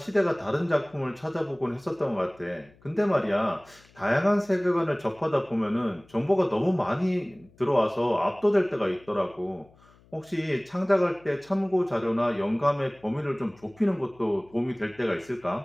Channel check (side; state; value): left; noise; hum, 29 dB below the sound